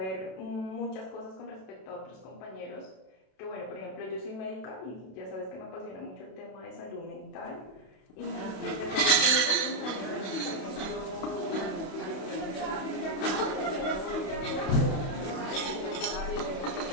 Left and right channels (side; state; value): right; late; 31 ms